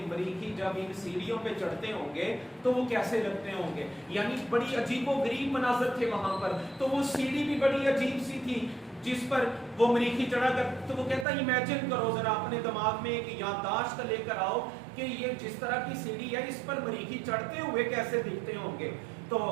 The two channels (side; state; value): left; drops out; at 11.2 s